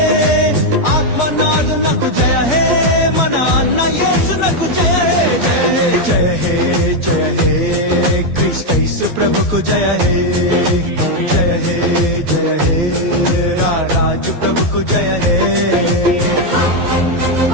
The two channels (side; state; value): left; late; 12 ms